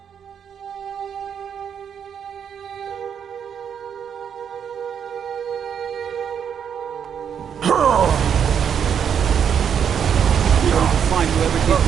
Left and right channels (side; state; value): left; quieter; 8.0 dB